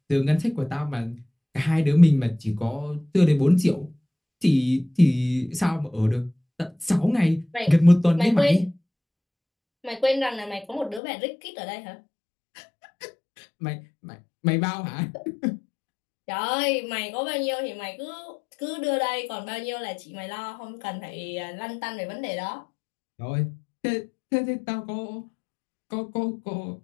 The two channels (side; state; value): right; drops out; at 11.0 s